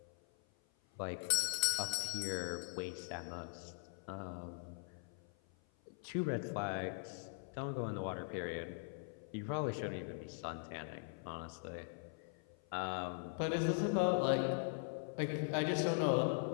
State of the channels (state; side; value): silent; right; 50 dB below the other